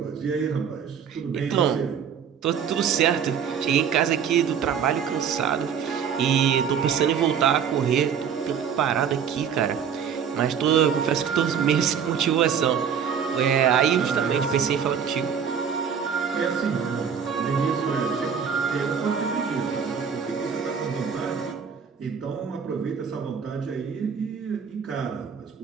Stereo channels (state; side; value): quieter; left; 7.4 dB